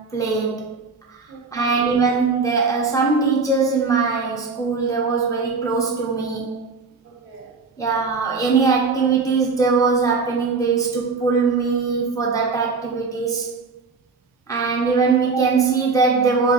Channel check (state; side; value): quieter; left; 4.5 dB